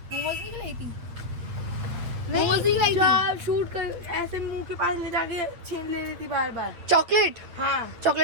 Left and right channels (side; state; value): left; late; 8.7 ms